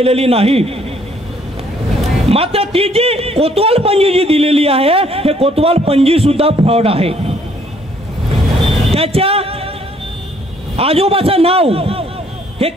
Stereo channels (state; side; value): normal; both; correlation 0.64